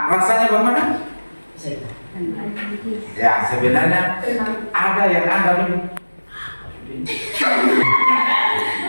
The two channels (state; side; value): inverted; both; correlation -1.00